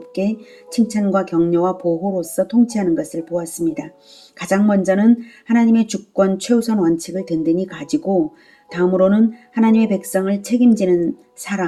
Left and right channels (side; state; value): both; identical; correlation 1.00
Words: 칭찬과 격려와 보호로서 통치하는 것을 보았습니다. 가장 먼저는 하나님의 주권 최우선 원칙을 든든히 가지고 다음으로는 하나님의 백성을 책임지는